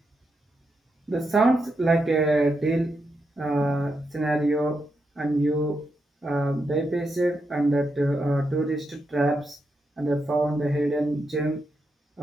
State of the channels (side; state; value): both; normal; correlation 0.84